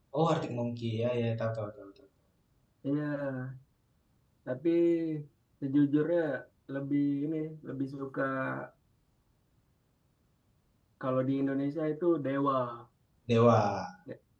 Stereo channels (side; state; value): both; identical; correlation 1.00